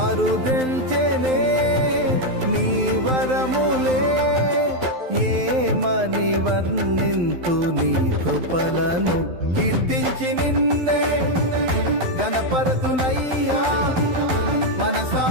అరుదెల్చెనే నీ వరములే ఏమని వర్ణింతు నీ కృపలను కీర్తించి నిన్నే గణపరతునయ్యా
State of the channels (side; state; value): left; late; 12 ms